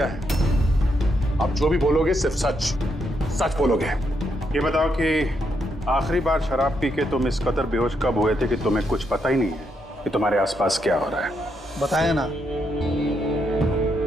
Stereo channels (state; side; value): normal; both; correlation 0.79